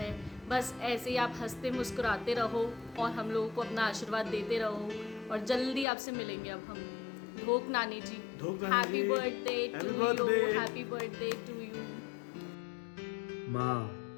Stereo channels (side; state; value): right; drops out; at 5.9 s